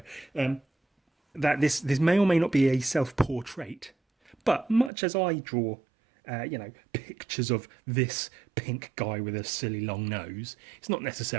that this may or may not be a self-portrait, but much as I draw, pictures of this pink guy with a silly long nose, it's not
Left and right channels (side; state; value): left; drops out; at 4.9 s